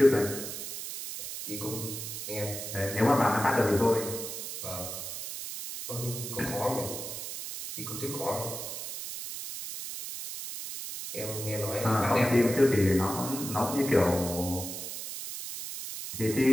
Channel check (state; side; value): noise; right; hiss, 7 dB below the sound